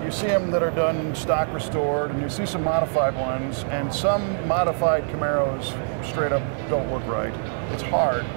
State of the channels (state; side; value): silent; left; 59 dB below the other